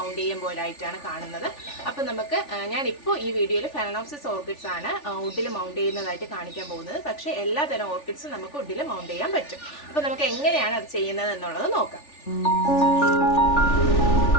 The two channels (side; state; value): right; late; 3.4 ms